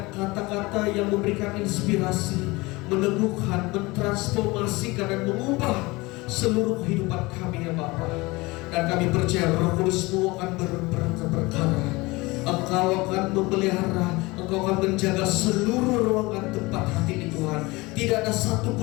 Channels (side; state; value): right; quieter; 22.7 dB